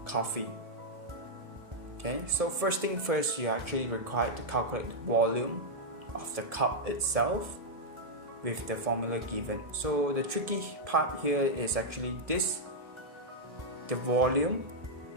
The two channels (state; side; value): late; left; 1.7 ms